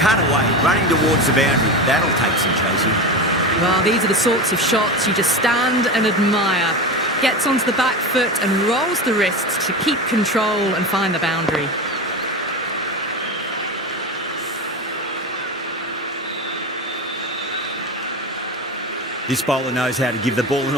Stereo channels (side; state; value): both; normal; correlation 0.24